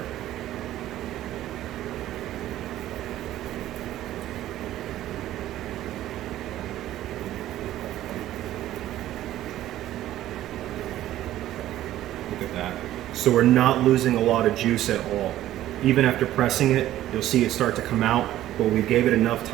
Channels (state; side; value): quieter; left; 13.6 dB